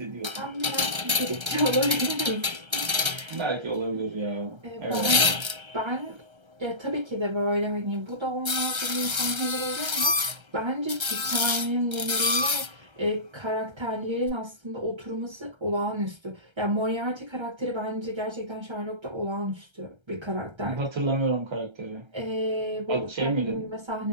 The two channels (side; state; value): left; late; 1.3 ms